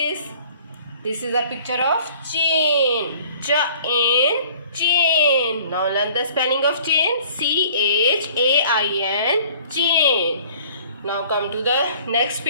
This is a picture of chain. Chain, chain. Now learn the spelling of chain. CHAIN, chain. Now come to the next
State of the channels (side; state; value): both; inverted; correlation -0.52